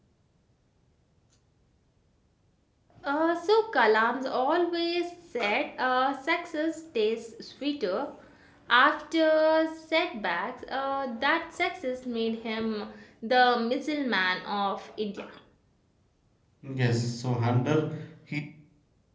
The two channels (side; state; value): both; identical; correlation 1.00